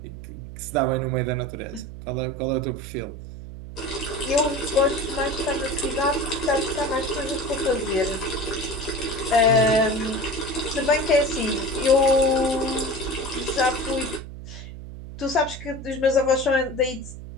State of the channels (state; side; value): noise; right; hum, 12 dB below the sound